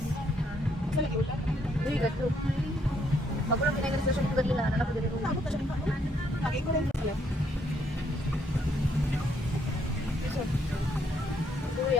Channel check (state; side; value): normal; both; correlation 0.71